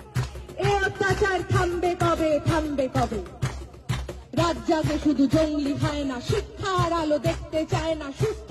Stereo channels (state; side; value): identical; both; correlation 1.00